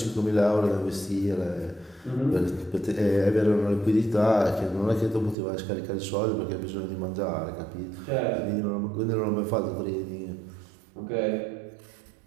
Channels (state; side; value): drops out; left; at 5.4 s